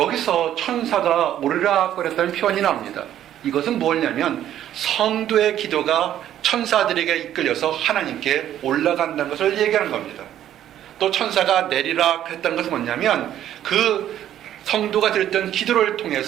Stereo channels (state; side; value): quieter; left; 11.4 dB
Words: 천사가 오르락거렸다는 표현이 나옵니다. 이것은 뭐냐면 성도의 기도가 천사들에게 이끌려서 하나님께 올라간다는 것을 얘기하는 겁니다. 또 천사가 내리락 했다는 것은 뭐냐면 그 성도가 드렸던 기도를